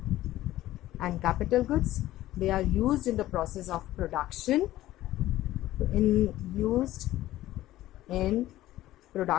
And capital goods, they are used in the process of production, used in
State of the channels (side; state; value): right; quieter; 15.1 dB